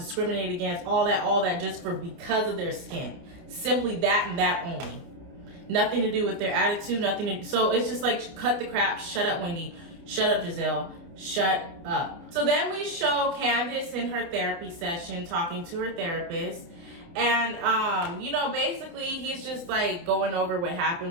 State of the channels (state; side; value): late; left; 29 ms